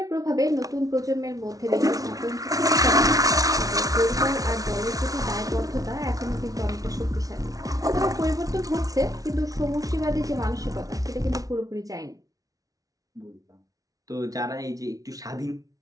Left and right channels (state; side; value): late; left; 0.18 ms